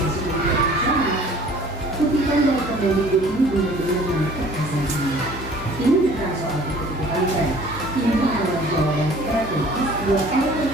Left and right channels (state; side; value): normal; both; correlation 0.51